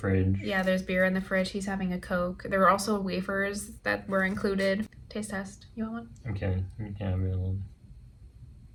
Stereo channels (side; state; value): both; identical; correlation 1.00